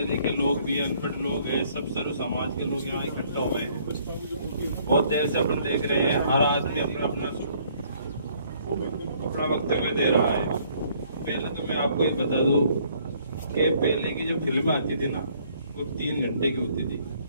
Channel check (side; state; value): both; inverted; correlation -0.63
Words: लिखे लोग भी, अनपढ़ लोग हैं, सब सर्व समाज के लोग यहाँ इकट्ठा हुए हैं। बहुत देर से अपन देख रहे हैं, हर आदमी अपना वक्तव्य दे रहा है। पहले तो मैं आपको ये बता दूं कि पहले की जो फिल्में आती थी ना, वो 3 घंटे की होती थी।